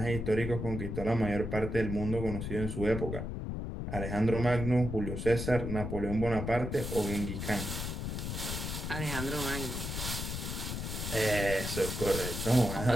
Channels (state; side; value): noise; left; rumble, 4 dB below the sound